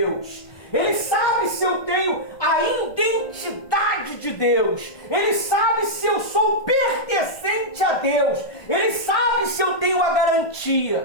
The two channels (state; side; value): late; right; 1.6 ms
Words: Ele sabe se eu tenho a identidade de Deus. Ele sabe se eu sou pertencente a Deus. Ele sabe se eu tenho a